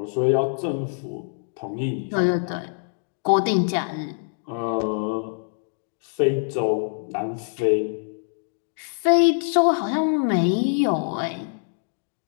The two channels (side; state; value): right; silent; digital silence